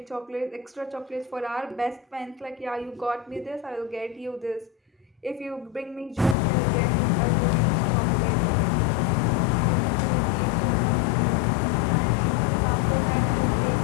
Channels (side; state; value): right; drops out; at 6.4 s